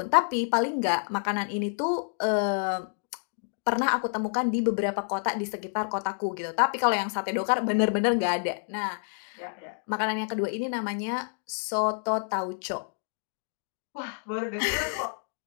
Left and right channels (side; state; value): right; silent; digital silence